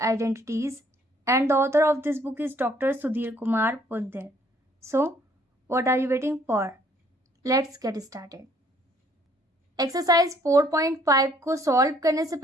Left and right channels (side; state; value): both; normal; correlation 0.63